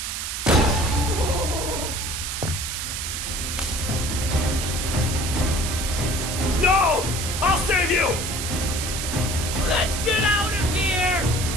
No! I'll save you! Let's get out of here!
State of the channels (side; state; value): right; noise; hiss, 4 dB below the sound